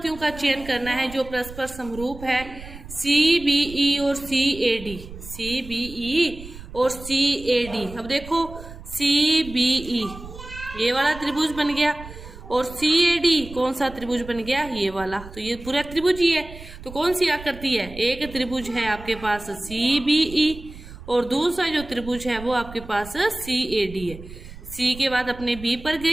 का चयन करना है जो परस्पर समरूप है, सी बी ई और सी A D, C B E और सी ए डी। अब देखो सी बी ई ये वाला त्रिभुज बन गया, और सी ए डी कौन सा त्रिभुज बन गया, ये वाला। तो ये पूरा त्रिभुज ही है। तो कौन सी आकृति है, एक त्रिभुज है आपके पास सी बी ई, और दूसरा जो त्रिभुज है वो आपके पास सी ए डी है। सी के बाद अपने बी पर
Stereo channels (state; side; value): noise; right; rumble, 15 dB below the sound